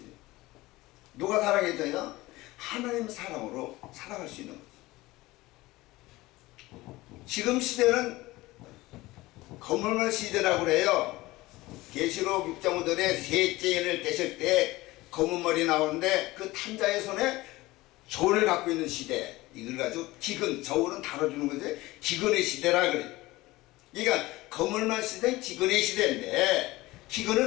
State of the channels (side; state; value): right; quieter; 19.4 dB